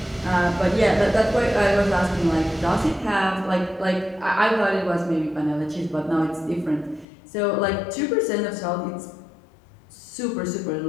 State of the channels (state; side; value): drops out; right; at 7.1 s